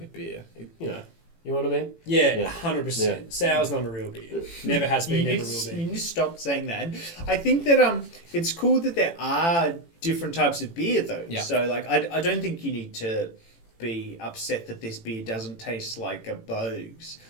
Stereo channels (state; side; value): late; right; 18 ms